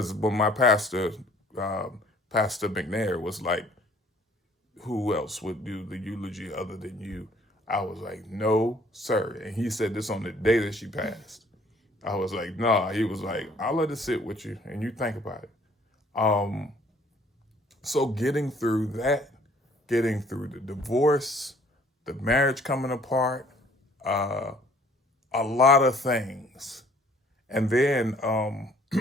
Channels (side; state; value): both; normal; correlation 0.58